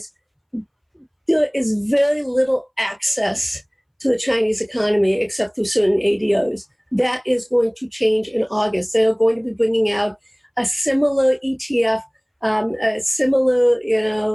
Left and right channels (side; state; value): both; identical; correlation 1.00